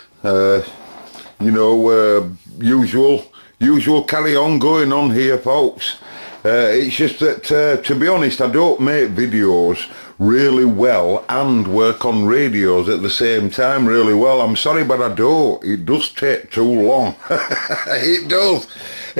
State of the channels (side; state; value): both; inverted; correlation -1.00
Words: usual carry on going on here folks. It's just that to be honest I don't make videos really well and work on radios at the same time really well. I'm sorry but I don't. It does take too long. It